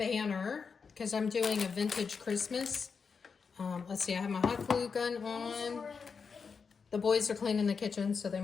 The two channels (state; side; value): quieter; right; 5.6 dB